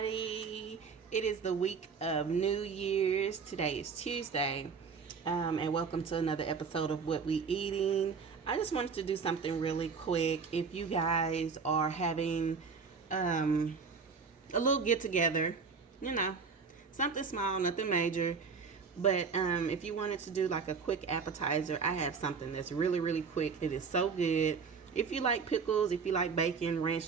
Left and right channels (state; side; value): quieter; left; 5.4 dB